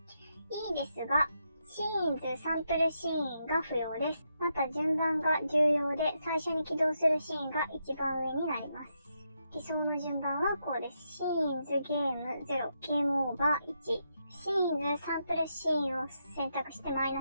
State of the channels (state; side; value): inverted; both; correlation -0.81